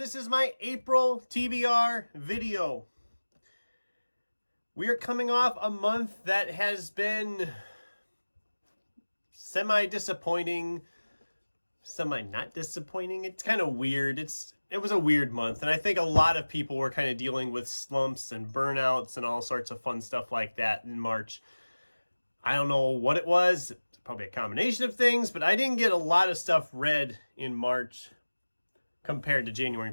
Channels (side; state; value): both; inverted; correlation -1.00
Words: is my April TBR video. We are coming off a month that has been semi-disappointing, semi-not disappointing. It's kind of weird. It was a weird month, and I think a lot of people were kind of dealing with slumps and burnouts and all sorts of fun stuff like that in March. I don't know what it was. It's probably a combination of things, but I didn't get a lot of stuff read in March compared to January